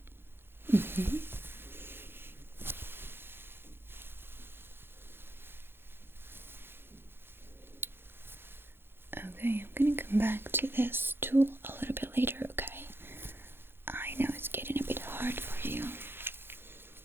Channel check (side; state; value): left; late; 0.11 ms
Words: Okay, I'm gonna come back to this tool a little bit later, okay? I know it's getting a bit hard for you.